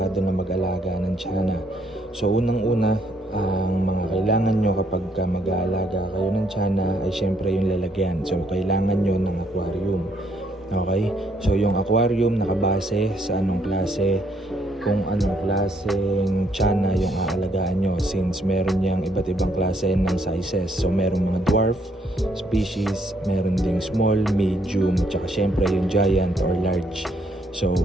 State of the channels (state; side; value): normal; both; correlation 0.70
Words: na mag-alaga ng tiyanak. So unang-una, ang mga kailangan nyo kapag mag-aalaga kayo ng tiyanak ay syempre yung lalagyan. So kailangan nyo ng aquarium. Okay? So yung aquarium nakabase sa anong klase, kung anong klaseng tiyanak yung aalagaan nyo, since meron niyang iba't ibang klase ng sizes. So meron mga dwarf species, meron ding small, medium, tsaka syempre yung giant or large. So